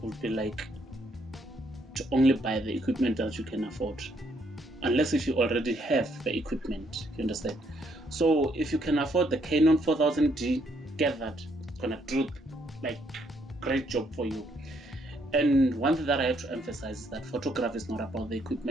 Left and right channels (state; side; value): normal; both; correlation 0.71